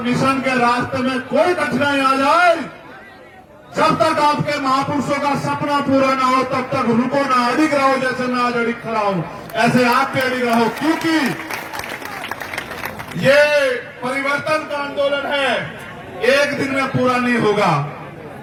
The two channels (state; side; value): identical; both; correlation 1.00